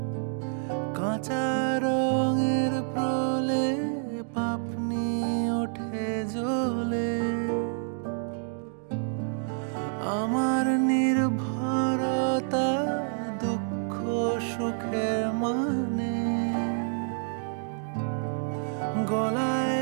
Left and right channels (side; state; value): left; silent; 59 dB below the other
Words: কাঁচা রঙের প্রলে পাপনি ওঠে জ্বলে। আমার নির্ভরতা দুঃখ সুখের মানে,